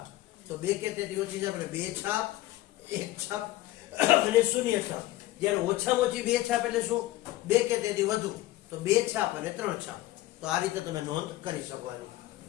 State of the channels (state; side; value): quieter; right; 16.4 dB